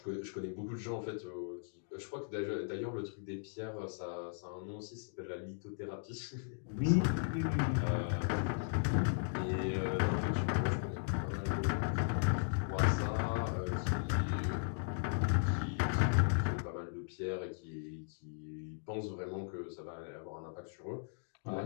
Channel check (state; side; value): silent; right; digital silence